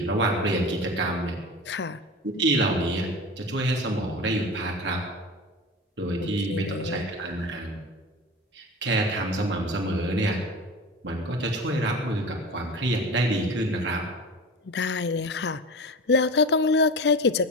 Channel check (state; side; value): normal; both; correlation 0.31